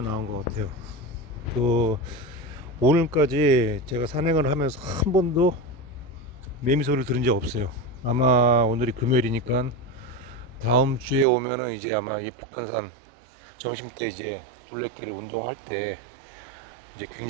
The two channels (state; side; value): drops out; left; at 11.2 s